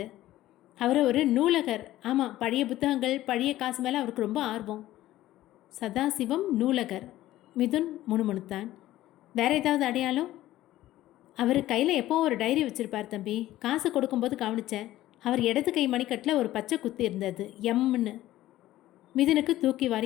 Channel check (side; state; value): right; quieter; 15.0 dB